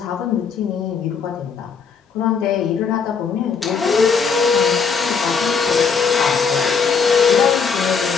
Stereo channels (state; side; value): quieter; right; 5.8 dB